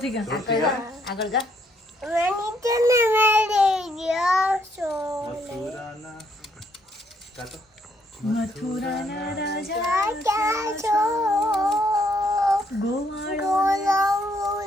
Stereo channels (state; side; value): normal; both; correlation 0.70